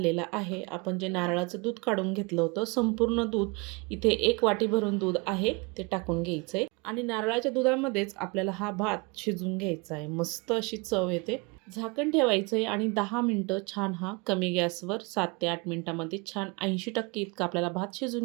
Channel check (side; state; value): left; quieter; 28.3 dB